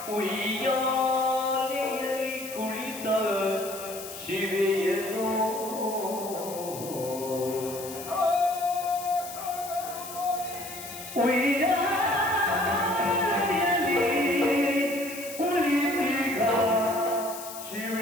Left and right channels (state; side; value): noise; left; hiss, 12 dB below the sound